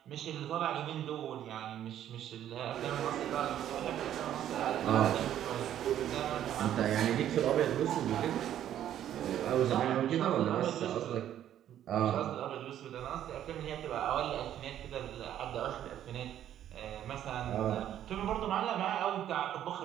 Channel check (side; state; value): left; quieter; 11.1 dB